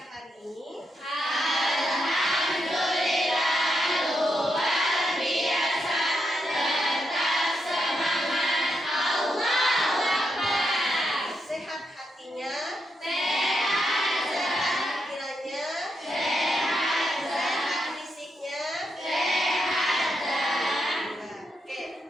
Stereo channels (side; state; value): both; normal; correlation 0.83